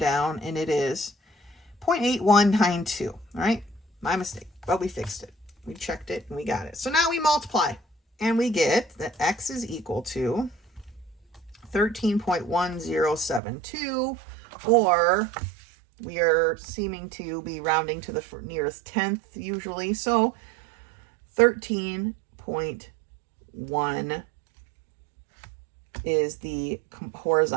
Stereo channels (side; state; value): left; drops out; at 13.4 s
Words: and it is 0.8192. All right. My mistake, but we fixed it. We checked it and we got it. So now we multiply and we get that x is equal to 13.1072, or we are seeming to be rounding to the nearest tenth usually. So 13.1 is the